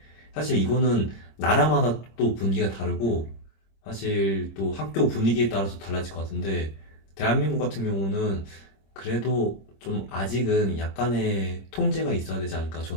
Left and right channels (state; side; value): late; right; 26 ms